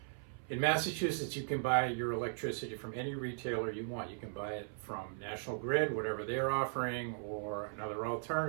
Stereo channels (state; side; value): silent; left; 53 dB below the other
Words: In Massachusetts, you can buy your electricity from any retailer you want. You can buy it from National Grid, whatever they're offering, or another